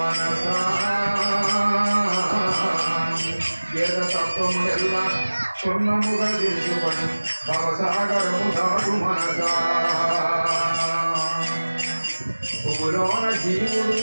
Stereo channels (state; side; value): inverted; both; correlation -1.00